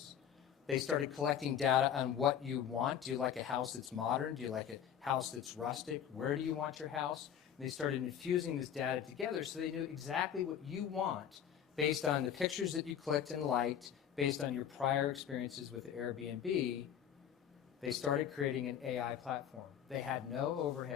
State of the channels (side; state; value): right; quieter; 9.2 dB